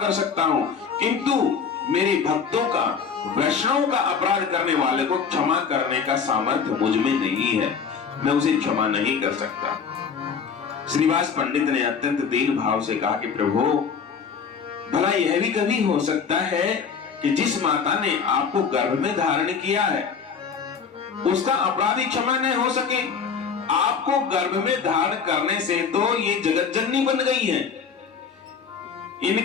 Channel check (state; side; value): quieter; right; 6.3 dB